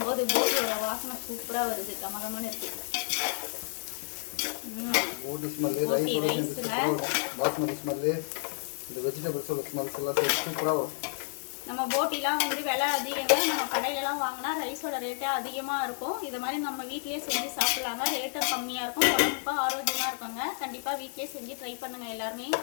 போது போட்டியோட வாசனை சூப்பராக வருது. கமகமான இருக்கு. நம்ம போட்டிலாம் வந்து விலை அதிகங்க. நம்ம கடையிலலாம் வாங்கினா ரைஸோட ரேட்டே அதிகமாக இருக்கும். இது மாதிரி நம்ம வீட்லேயே செஞ்சு சாப்பிட்லாங்க. ரேட்டும் கம்மியாக இருக்கும், உடம்புக்கும் ஆரோக்கியமாக இருக்குங்க. கண்டிப்பாக வீட்லேயே செஞ்சு ட்ரை பண்ணுங்கள் எல்லாருமே.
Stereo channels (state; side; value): silent; right; digital silence